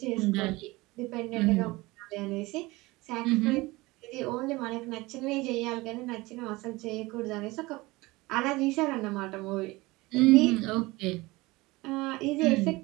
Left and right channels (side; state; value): left; quieter; 21.5 dB